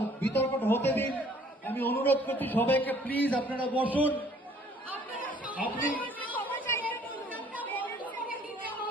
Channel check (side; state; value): both; normal; correlation 0.58